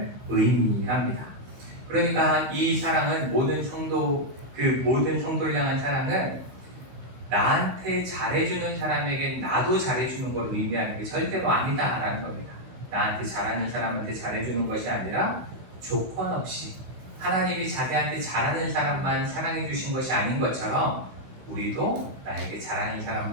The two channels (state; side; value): late; left; 16 ms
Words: 의미합니다. 그러니까 이 사랑은 모든 성도를 향한 사랑은 나한테 잘해주는 사람에게 나도 잘해주는 걸 의미하는 게 절대로 아니다라는 겁니다. 나한테 잘하는 사람한테 잘해주는 것이 아니라 조건 없이 하나님이 자기한테 잘하는 사람만 사랑해 주신 것이 아닌 것처럼 우리도 나에게 잘하는